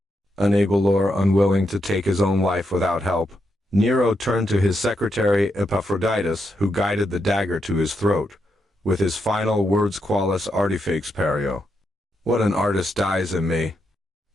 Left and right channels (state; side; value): normal; both; correlation 0.82